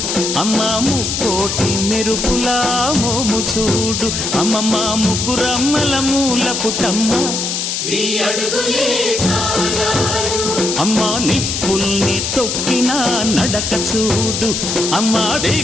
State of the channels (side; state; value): left; noise; hiss, 2 dB below the sound